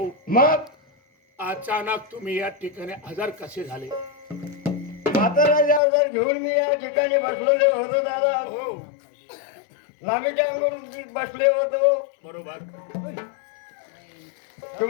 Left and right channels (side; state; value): right; drops out; at 5.8 s